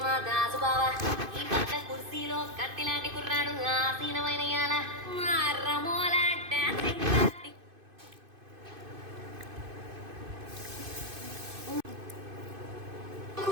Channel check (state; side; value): late; left; 2.5 ms